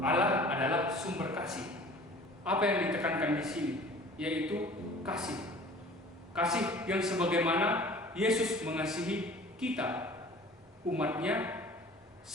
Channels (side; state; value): both; normal; correlation 0.46